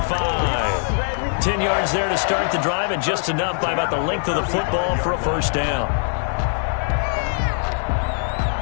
10 yards there to start the drive, and just enough by about the length of the football for a first down.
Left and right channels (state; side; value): silent; right; 56 dB below the other